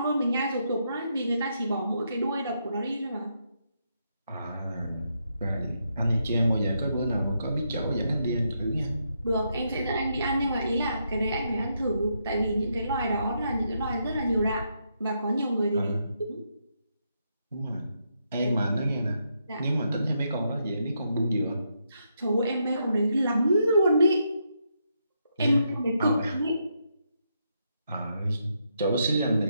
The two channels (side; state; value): both; inverted; correlation -0.79